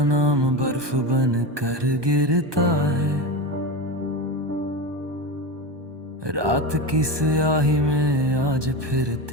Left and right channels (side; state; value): left; late; 1.2 ms